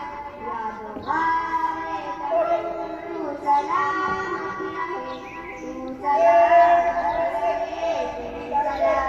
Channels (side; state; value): both; identical; correlation 1.00